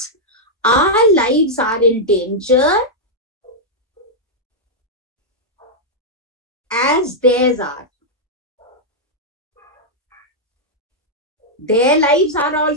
our lives are in danger as theirs are. Their lives are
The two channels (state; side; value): normal; both; correlation -0.05